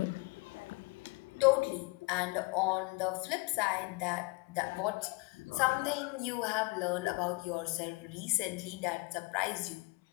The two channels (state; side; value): quieter; right; 26.6 dB